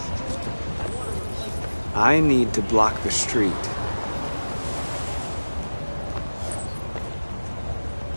I need to block the street.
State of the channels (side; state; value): both; inverted; correlation -1.00